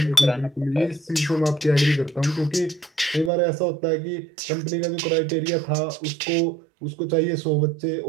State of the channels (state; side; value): drops out; left; at 3.3 s